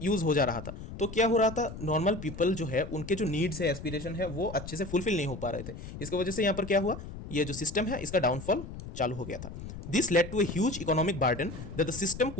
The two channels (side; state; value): left; noise; rumble, 11 dB below the sound